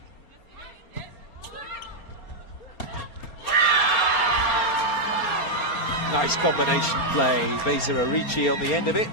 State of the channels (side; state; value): right; late; 4.3 ms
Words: Nice combination play. Vesa Arici on the end of it,